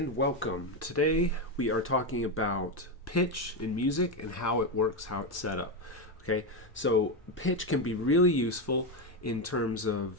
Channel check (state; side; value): normal; both; correlation 0.10